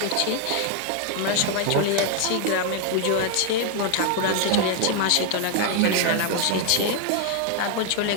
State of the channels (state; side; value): different; both; correlation 0.00